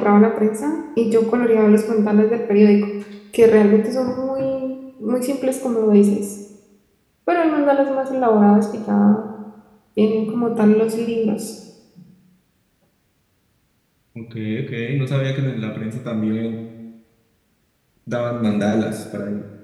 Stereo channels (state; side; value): identical; both; correlation 1.00